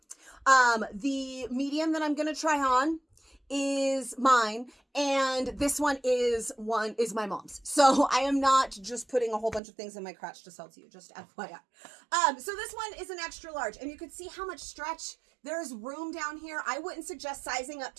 The medium that I'm going to try on is mine, and this one is my mom's. So I am not just putting a whole bunch of things in my crotch to sell to you, just FYI. So this one is an extra large, and you can see how much stretch. There's room down here. I wouldn't suggest sizing up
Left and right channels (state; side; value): drops out; left; at 9.6 s